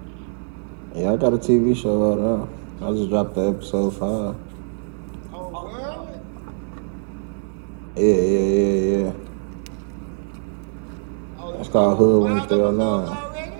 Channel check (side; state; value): left; silent; digital silence